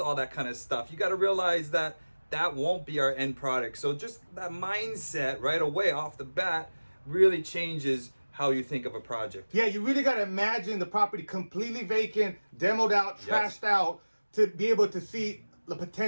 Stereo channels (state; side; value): inverted; both; correlation -1.00